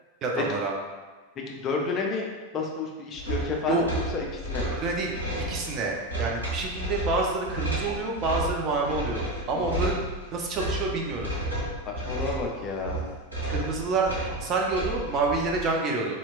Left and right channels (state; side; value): normal; both; correlation 0.18